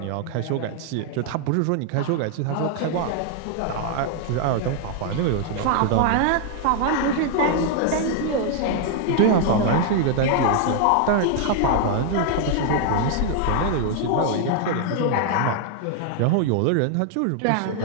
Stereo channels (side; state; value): both; different; correlation 0.00